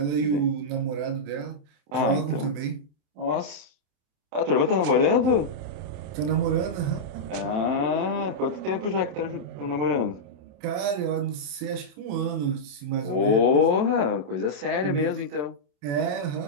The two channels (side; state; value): left; late; 28 ms